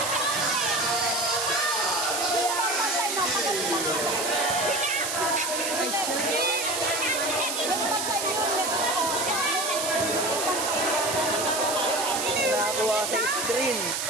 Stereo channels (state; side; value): noise; right; hiss, 2 dB below the sound